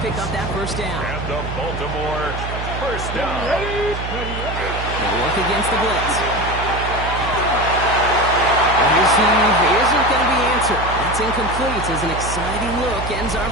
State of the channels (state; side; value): noise; right; hum, 6 dB below the sound